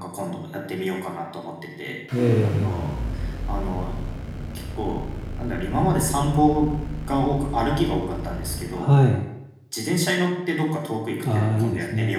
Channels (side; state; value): both; identical; correlation 1.00